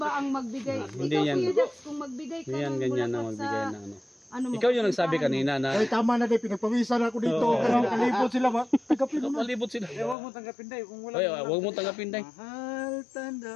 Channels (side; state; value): right; drops out; at 10.2 s